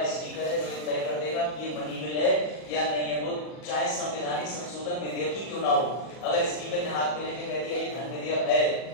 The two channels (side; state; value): right; late; 40 ms